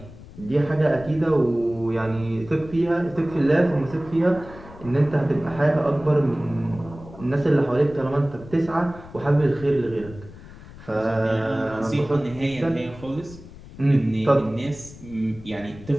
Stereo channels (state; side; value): noise; left; rumble, 17 dB below the sound